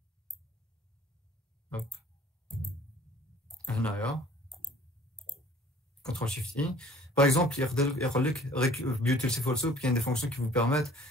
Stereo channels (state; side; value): normal; both; correlation 0.52